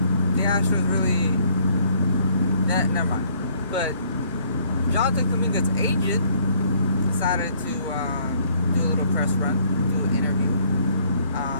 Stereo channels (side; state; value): both; inverted; correlation -0.62